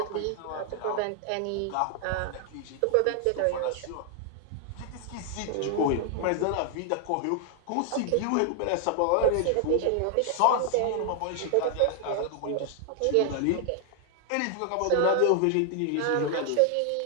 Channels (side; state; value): both; different; correlation 0.00